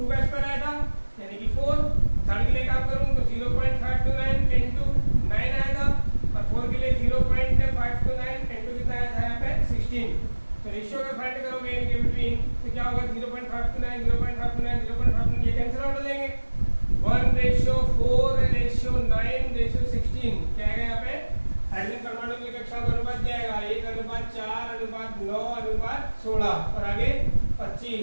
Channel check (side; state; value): both; inverted; correlation -1.00